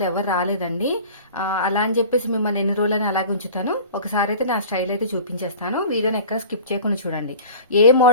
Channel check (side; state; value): both; inverted; correlation -0.40